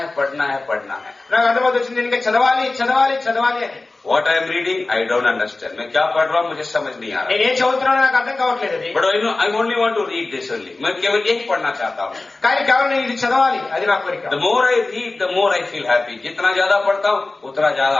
నాకు అర్థమవుతొచ్చింది ఇంకా చదవాలి అని. What I am reading, I don't understand. मैं क्या पढ़ रहा हूँ मुझे समझ नहीं आ रहा. నేను ఏం చదువుతున్నానో నాకు అర్థం కావట్లేదు అది. But I only want to read this only. मैं केवल यही पढ़ना चाहता हूँ. కానీ కేవలం నేను ఇది చదవాలి, అది నా కోరిక. The more I read, the more I feel happy. जितना ज्यादा पढ़ता हूँ उतना ज्यादा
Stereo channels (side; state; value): right; quieter; 3.3 dB